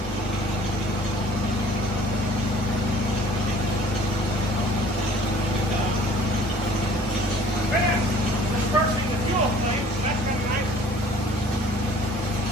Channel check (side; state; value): both; normal; correlation 0.52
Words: Dispersing the fuel flame, so that's kind of nice.